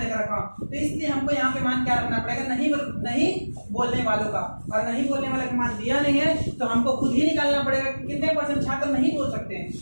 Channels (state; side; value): inverted; both; correlation -1.00